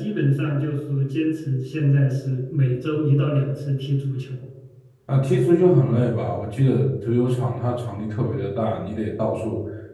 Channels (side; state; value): both; identical; correlation 1.00